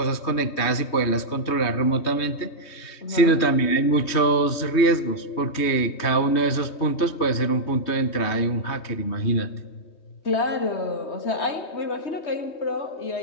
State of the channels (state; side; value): late; right; 3.2 ms